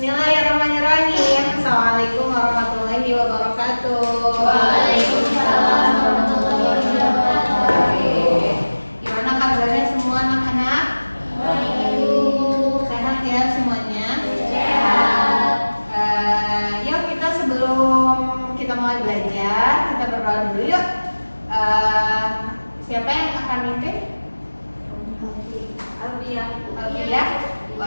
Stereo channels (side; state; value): both; inverted; correlation -1.00